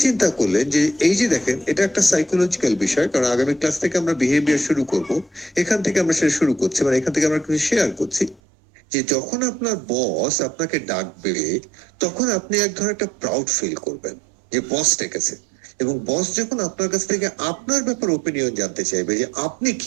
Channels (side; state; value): left; drops out; at 8.4 s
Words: চিন্তা করলেন যে এই যে দেখেন এটা একটা সাইকোলজিক্যাল বিষয়, কারণ আগামী ক্লাস থেকে আমরা বিহেভিয়ার শুরু করব, এখান থেকে আমরা সেটা শুরু করছি, মানে এখান থেকে আমরা কিছু শেয়ার করছি যে যখন আপনার বস আপনাকে ডাকবে তখন আপনি এক ধরনের একটা প্রাউড ফিল করবেন যে বস ডেকেছে, এবং বস যখন আপনার কাছ থেকে আপনার ব্যাপারে ওপিনিয়ন জানতে চাইবে যে আপনি